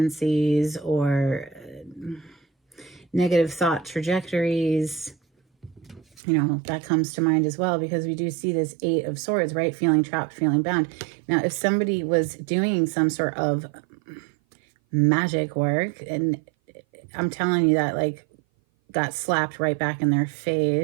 or negative thought trajectories? That comes to mind as well, because we do see this Eight of Swords, right? Feeling trapped, feeling bound. Now, if somebody was doing some sort of magic work, and I'm telling you that, like, got slapped right back in their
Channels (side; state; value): left; drops out; at 6.1 s